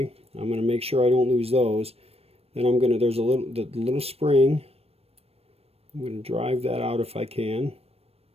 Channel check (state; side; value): late; left; 0.29 ms